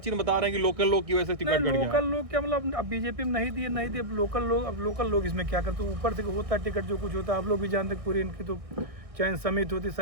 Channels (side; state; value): left; late; 1.6 ms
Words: में बता रहे हैं कि लोकल लोग की वजह से टिकट कट गया। लोकल लोग क्या, मतलब अब बीजेपी में नहीं दिए, अब लोकल लोग इसमें क्या करते? ऊपर से होता टिकट जो कुछ होता, आप लोग भी जानते, पूरी इनकी तो चयन समिति होती,